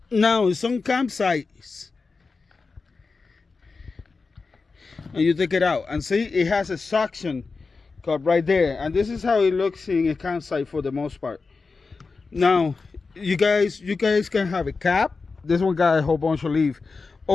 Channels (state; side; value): quieter; right; 4.3 dB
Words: Now, in some campsites, and you take it out and see it has a suction cup right there, and this is how it looks in a campsite for the most part. Now you guys can have a cap. This one got a whole bunch of leaves,